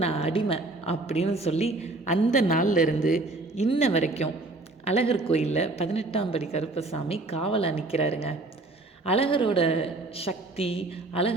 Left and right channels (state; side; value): quieter; left; 3.0 dB